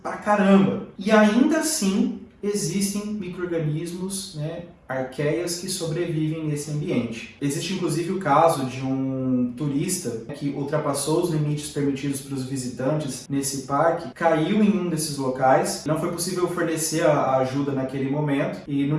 pra caramba. E ainda assim existem micro-organismos, né, arqueias que sobrevivem nesse ambiente. Existe inclusive o caso de um turista que ultrapassou os limites permitidos para os visitantes nesse parque, caiu em um desses locais, não foi possível fornecer a ajuda naquele momento e no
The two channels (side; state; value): both; identical; correlation 1.00